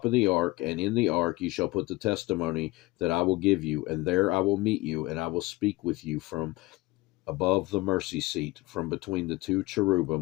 of the ark, and in the ark you shall put the testimony that I will give you, and there I will meet you, and I will speak with you from above the mercy seat, from between the 2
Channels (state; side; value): quieter; right; 20.9 dB